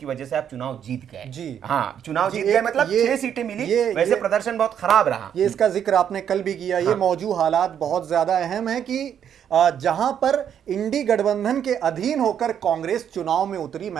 वजह से आप चुनाव जीत गए। जी हाँ, चुनाव जीत गए, मतलब 6 सीटें मिली। वैसे प्रदर्शन बहुत खराब रहा। ये इसका जिक्र आपने कल भी किया। ये मौजूद हालात बहुत ज्यादा अहम है कि जहां पर इंडी गठबंधन के अधीन होकर कांग्रेस चुनाव में उतरी,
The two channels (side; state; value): left; quieter; 9.0 dB